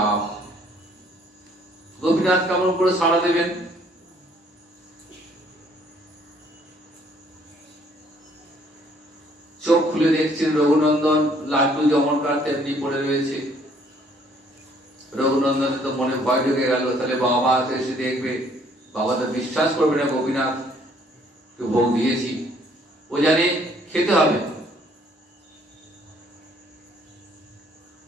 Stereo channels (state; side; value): normal; both; correlation 0.62